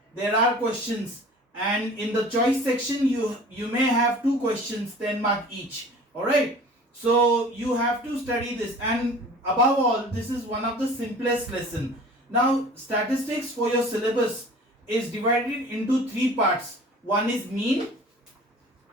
there are questions, and in the choice section you may have 2 questions 10 mark each. All right, so you have to study this, and above all this is one of the simplest lesson. Now statistics for your syllabus is divided into 3 parts. One is mean,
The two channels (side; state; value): both; normal; correlation 0.44